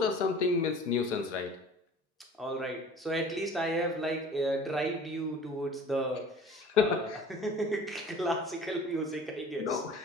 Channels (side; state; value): both; normal; correlation 0.45